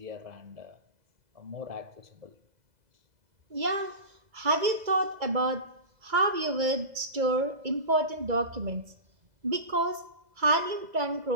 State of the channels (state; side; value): late; left; 2.0 ms